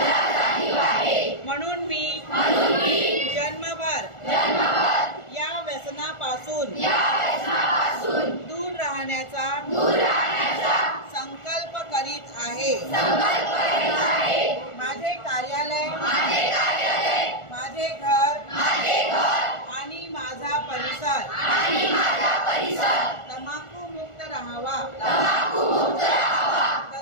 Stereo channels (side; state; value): right; late; 1.4 ms